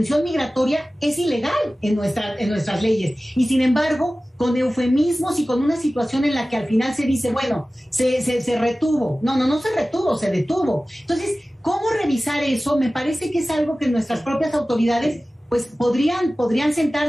migratoria es ilegal en nuestras leyes, y sin embargo, con eufemismos y con una situación en la que al final se dice, bueno, se retuvo. No se retuvo, se detuvo. Entonces, ¿cómo revisar eso? Me parece que es algo que nuestras propias autoridades pues podrían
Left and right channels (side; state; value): both; normal; correlation 0.96